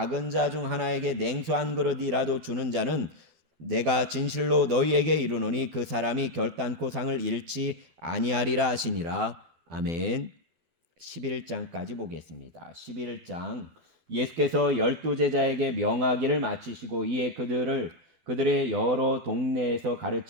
자 중 하나에게 냉수 한 그릇이라도 주는 자는 내가 진실로 너희에게 이르노니 그 사람이 결단코 상을 잃지 아니하리라 하시니라. 아멘. 11장까지 보겠습니다. 11장 예수께서 12제자에게 명하기를 마치시고 이에 그들의 여러 동네에서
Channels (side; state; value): left; late; 12 ms